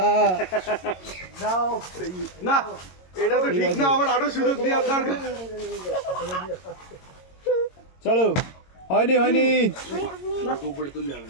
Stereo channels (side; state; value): right; late; 22 ms